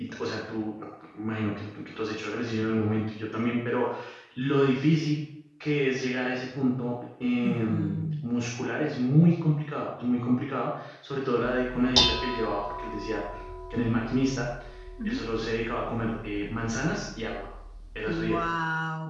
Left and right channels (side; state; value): both; identical; correlation 1.00